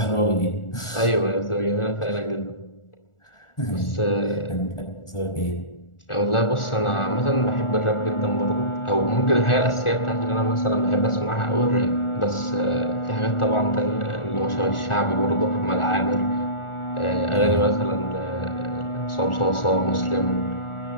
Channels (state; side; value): late; right; 1.4 ms